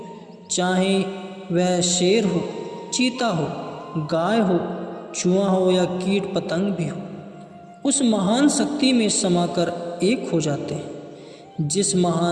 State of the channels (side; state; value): both; identical; correlation 1.00